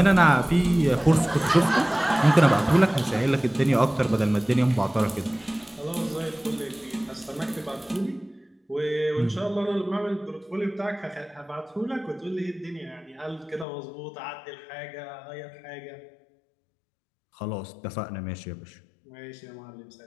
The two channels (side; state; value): right; drops out; at 13.7 s